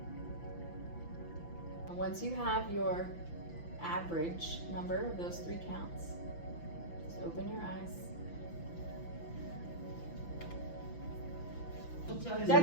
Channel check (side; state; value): right; late; 5.9 ms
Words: And once you have your average number of those 3 counts, just open your eyes.